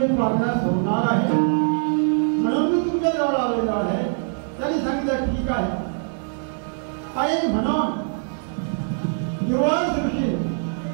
प्रार्थना सोडणार आहे म्हणून मी तुमच्या जवळ आलेलो आहे. त्यांनी सांगितलं ठीक आहे. आणि म्हणून दुर्वास ऋषी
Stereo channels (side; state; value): left; silent; digital silence